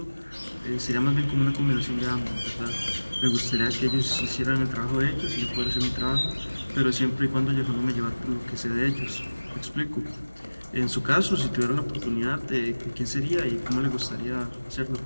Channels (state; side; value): inverted; both; correlation -1.00